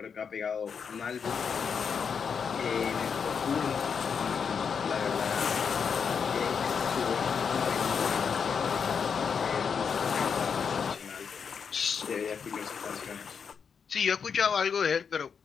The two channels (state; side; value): quieter; right; 6.4 dB